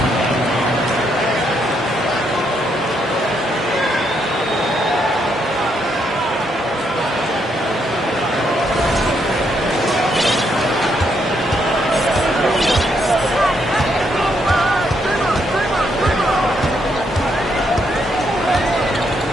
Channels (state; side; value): normal; both; correlation 0.76